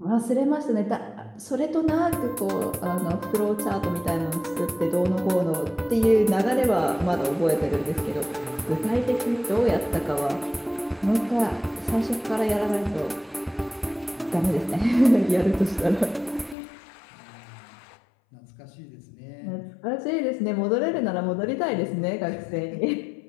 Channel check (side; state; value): right; drops out; at 16.6 s